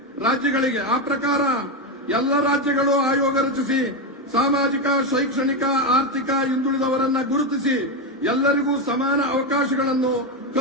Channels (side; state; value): both; normal; correlation 0.09